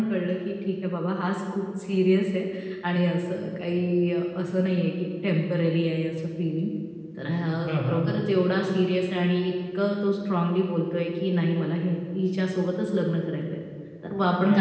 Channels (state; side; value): identical; both; correlation 1.00